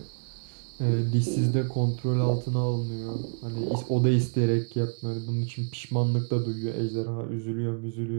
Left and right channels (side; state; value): left; silent; digital silence